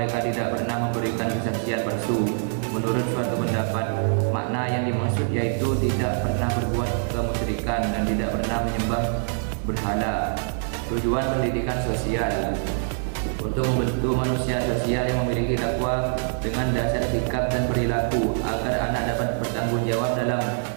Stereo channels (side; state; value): left; silent; digital silence